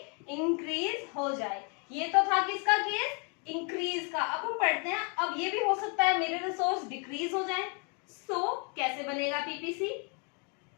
हो जाए। ये तो था किसका केस? इंक्रीज का। अब हम पढ़ते हैं, अब ये भी हो सकता है मेरे रिसोर्स डिक्रीज हो जाए। कैसे बनेगा पीपीसी?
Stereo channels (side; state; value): right; quieter; 36.4 dB